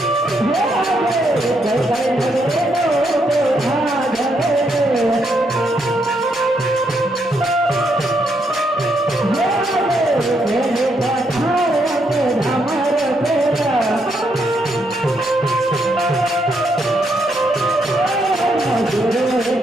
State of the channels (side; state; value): both; normal; correlation 0.77